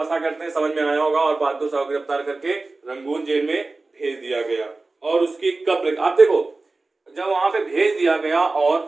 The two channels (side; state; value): left; quieter; 3.4 dB